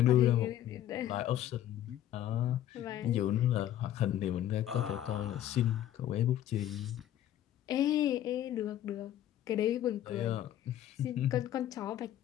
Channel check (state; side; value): quieter; right; 12.0 dB